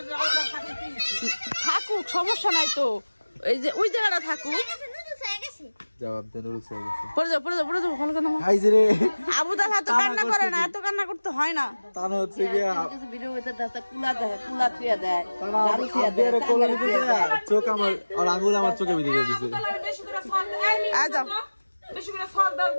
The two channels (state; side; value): inverted; both; correlation -1.00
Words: থাকুক, সমস্যা নাই তো, এই যে ওই জায়গাটা থাকুক। আবু তালা তো কান্না করে না, এত কান্না করতে হয় না। চোখ আমার আঙুল আমার চোখে ভিতরে দিচ্ছে।